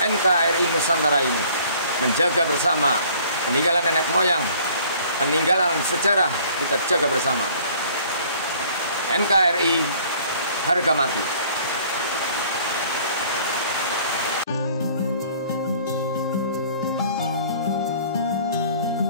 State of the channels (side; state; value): both; inverted; correlation -0.54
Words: NKRI Nusantara ini, menjaga bersama peninggalan nenek moyang, peninggalan sejarah kita jaga bersama. NKRI harga mati.